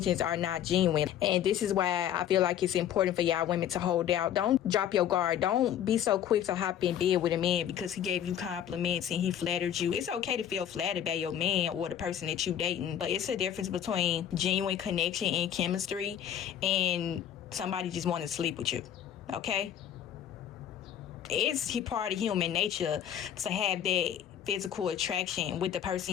are not genuine. And this is why I feel like it's important for y'all women to hold out. Don't drop your guard. Don't be so quick to hop in bed with a man because he gave you compliments and he flattered you. It's okay to feel flattered by your man or the person that you dating, but it's a difference between genuine connection and chemistry and somebody just want to sleep with you. Okay? It's part of human nature to have that physical attraction with the person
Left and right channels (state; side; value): quieter; right; 10.0 dB